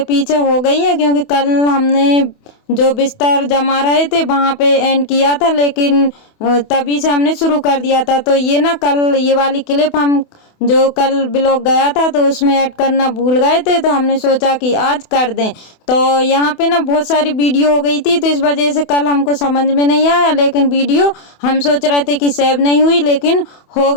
पीछे हो गई है, क्योंकि कल हमने जो बिस्तर जमा रहे थे वहाँ पे एंड किया था, लेकिन तभी से हमने शुरू कर दिया था। तो ये ना कल ये वाली क्लिप हम जो कल ब्लॉग गया था तो उसमें ऐड करना भूल गए थे, तो हमने सोचा कि आज कर दें। तो यहाँ पे ना बहुत सारी वीडियो हो गई थी, तो इस वजह से कल हमको समझ में नहीं आया, लेकिन वीडियो हम सोच रहे थे कि सेव नहीं हुई, लेकिन हो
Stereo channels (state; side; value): late; right; 28 ms